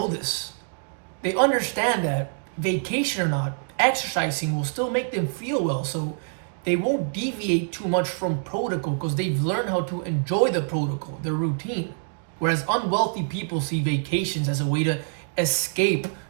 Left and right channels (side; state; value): left; silent; digital silence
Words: this. They understand that vacation or not, exercising will still make them feel well. So they won't deviate too much from protocol because they've learned how to enjoy the protocol, the routine. Whereas unwealthy people see vacations as a way to escape